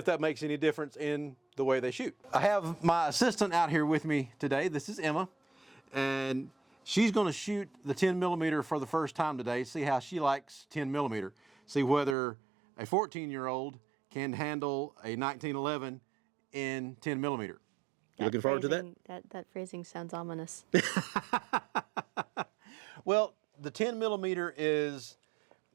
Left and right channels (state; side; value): drops out; left; at 12.2 s